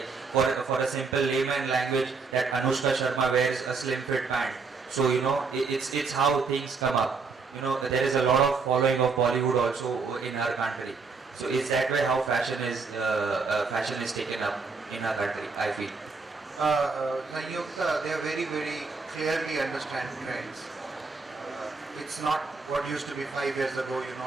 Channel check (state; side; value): quieter; left; 4.6 dB